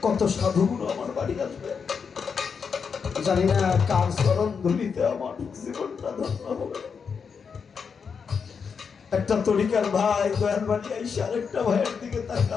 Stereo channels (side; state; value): right; quieter; 6.1 dB